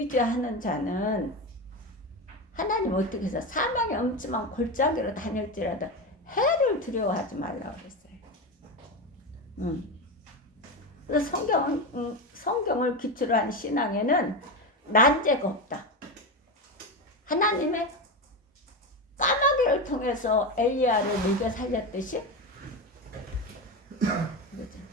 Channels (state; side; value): normal; both; correlation 0.18